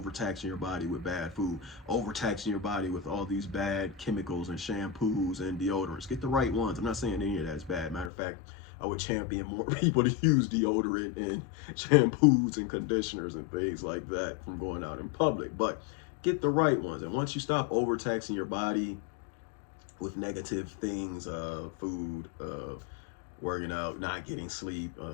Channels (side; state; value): right; drops out; at 8.1 s